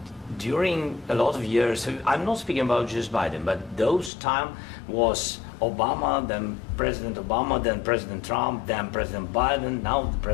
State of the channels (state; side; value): drops out; right; at 4.1 s